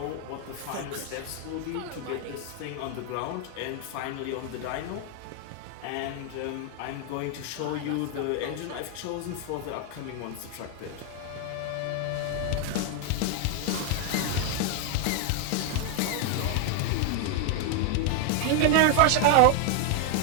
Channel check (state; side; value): different; both; correlation 0.01